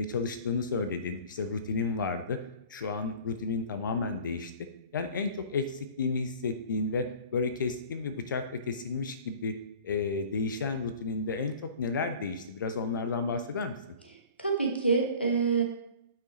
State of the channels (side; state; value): both; inverted; correlation -0.44